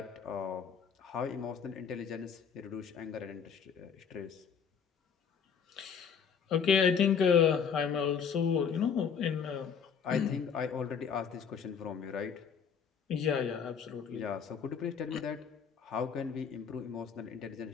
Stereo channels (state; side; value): quieter; right; 6.9 dB